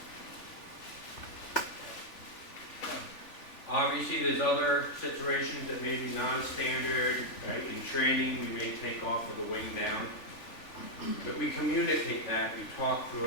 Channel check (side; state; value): right; late; 3.4 ms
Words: Obviously, there's other situations that may be non-standard, right? In training, we may take off with the wing down. But we communicate that, we talk